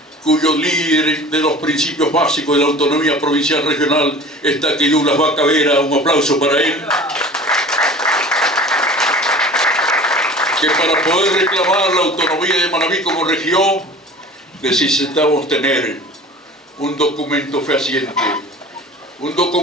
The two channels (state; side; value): normal; both; correlation 0.41